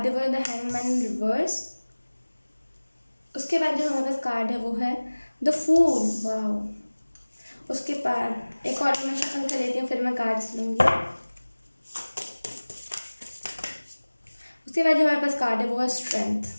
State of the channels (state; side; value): inverted; both; correlation -1.00